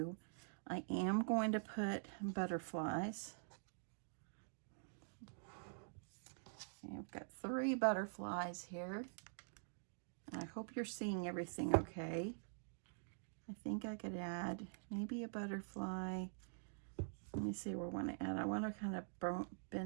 I am going to put butterflies. Okay, I've got 3 butterflies here. And I hope you're seeing everything okay. I think I could add maybe a butterfly. Let me see what I want to add. I want to kind of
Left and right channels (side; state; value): left; silent; digital silence